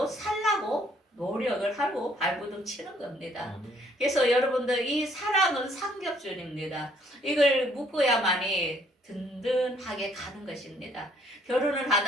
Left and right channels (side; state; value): both; normal; correlation 0.64